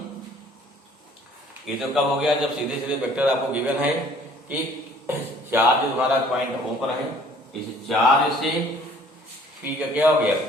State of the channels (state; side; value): normal; both; correlation 0.55